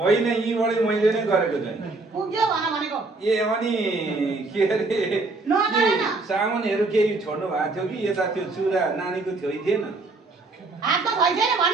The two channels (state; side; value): quieter; left; 3.4 dB